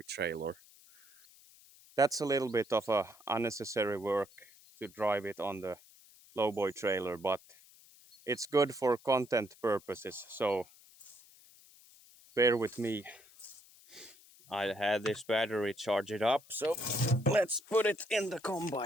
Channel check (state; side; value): noise; left; hiss, 25 dB below the sound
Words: trailer. That's a little bit of a unnecessary work to drive it on the lowboy trailer, but it's good for content purposes. So bear with me. I had this battery charge it up, so let's put it in the